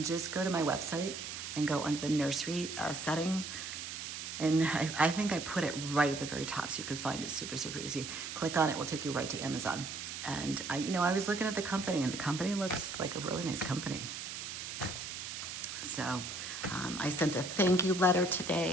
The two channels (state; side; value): noise; right; hiss, 7 dB below the sound